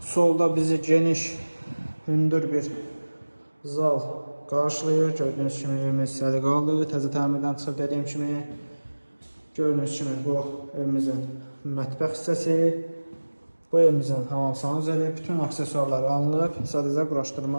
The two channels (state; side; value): inverted; both; correlation -1.00